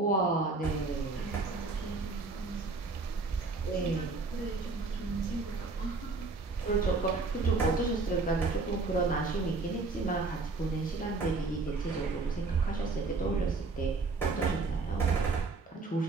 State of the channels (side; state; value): left; quieter; 3.8 dB